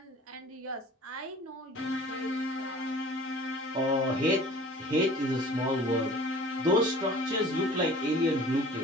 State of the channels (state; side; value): normal; both; correlation 0.46